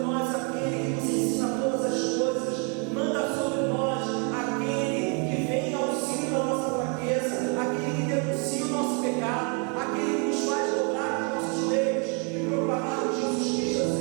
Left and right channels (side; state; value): left; quieter; 36.9 dB